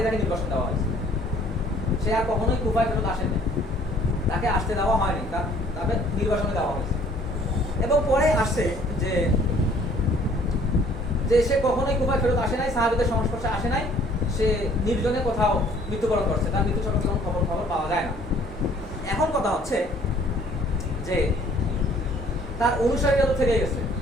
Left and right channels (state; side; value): normal; both; correlation 0.57